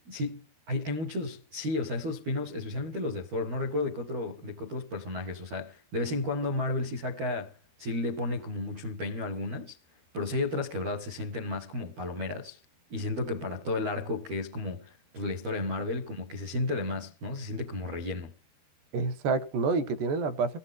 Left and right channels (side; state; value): left; late; 13 ms